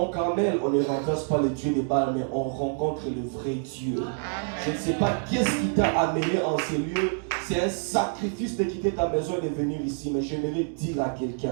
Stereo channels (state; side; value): silent; left; 60 dB below the other